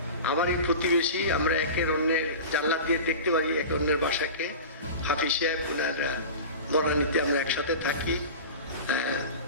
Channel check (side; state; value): both; inverted; correlation -0.32